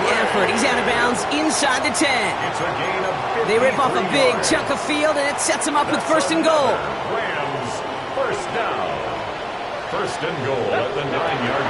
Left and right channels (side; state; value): both; identical; correlation 1.00